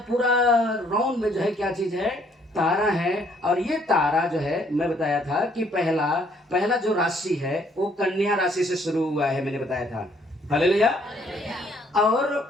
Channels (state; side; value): normal; both; correlation 0.65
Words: पूरा राउंड में जो है क्या चीज है? तारा है। और ये तारा जो है, मैं बताया था कि पहला जो राशि है वो कन्या राशि से शुरू हुआ है, मैंने बताया था। हालेलुया।